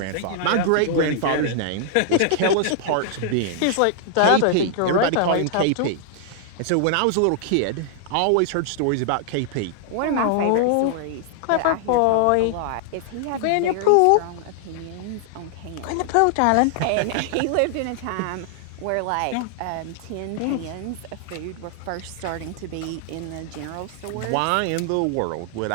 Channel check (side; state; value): both; different; correlation -0.01